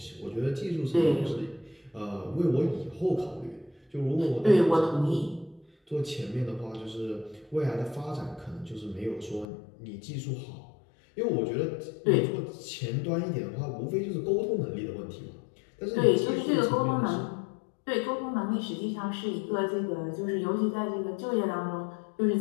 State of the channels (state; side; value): drops out; right; at 9.5 s